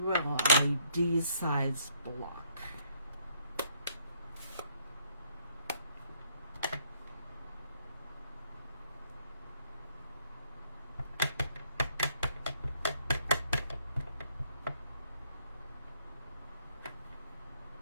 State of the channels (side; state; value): both; inverted; correlation -0.67